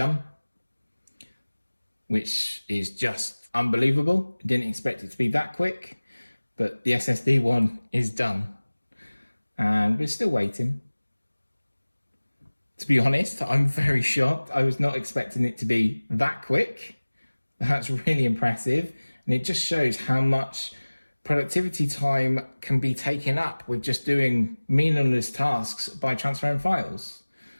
which is just unbelievable. Didn't expect it to be that quick, but the SSD one is done. And we're still waiting. To be honest, I'm very shocked. I was not expecting it to be that quick. That's really impressive. And it just shows how much productivity time can be taken up with just doing meaningless tasks by transferring files.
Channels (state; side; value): inverted; both; correlation -1.00